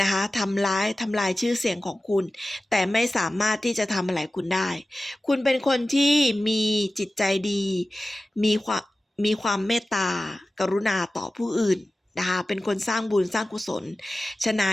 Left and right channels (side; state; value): both; normal; correlation 0.95